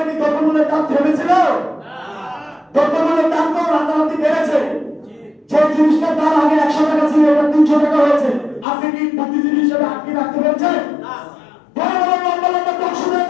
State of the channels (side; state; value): right; drops out; at 8.7 s